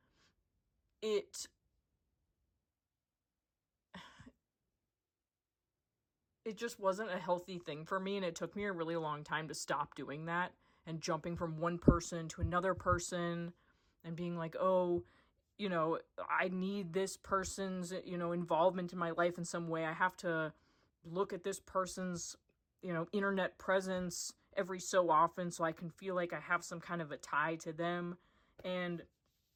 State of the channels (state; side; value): identical; both; correlation 1.00